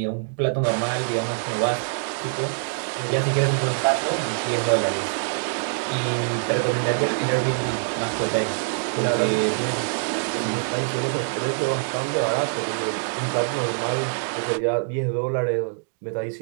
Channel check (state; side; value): silent; left; digital silence